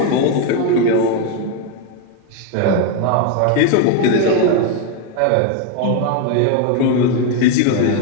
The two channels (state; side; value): different; both; correlation 0.01